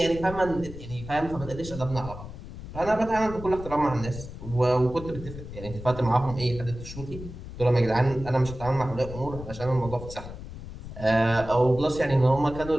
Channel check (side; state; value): left; noise; rumble, 11 dB below the sound